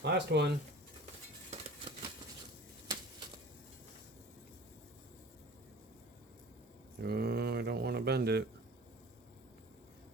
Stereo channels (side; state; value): both; normal; correlation 0.42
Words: Last one. Oh, I don't want to bend it.